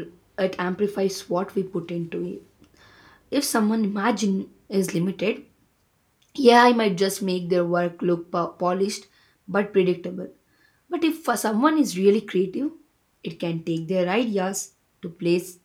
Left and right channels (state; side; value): identical; both; correlation 1.00